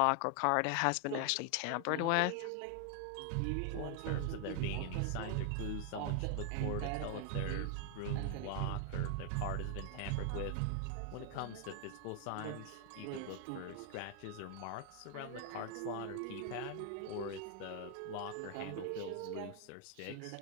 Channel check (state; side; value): different; both; correlation 0.00